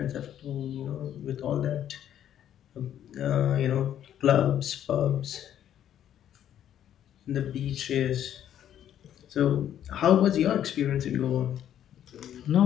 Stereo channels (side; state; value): right; quieter; 10.6 dB